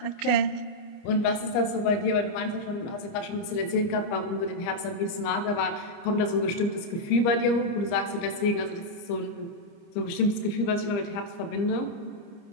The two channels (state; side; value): late; right; 29 ms